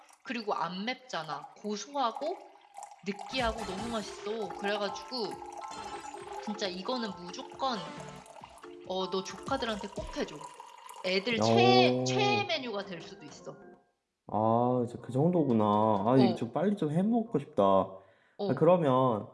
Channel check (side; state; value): both; identical; correlation 1.00